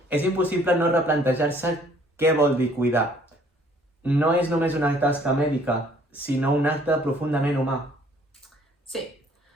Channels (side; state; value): both; normal; correlation 0.59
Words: és impossible no replantejar-se què vol dir cuidar. No és només una tasca mèdica, sinó un acte profundament humà. Sí,